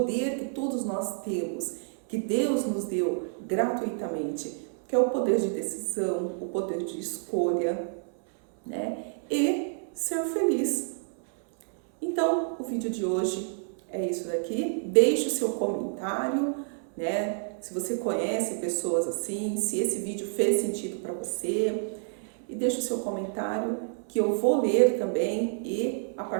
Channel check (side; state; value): left; silent; 59 dB below the other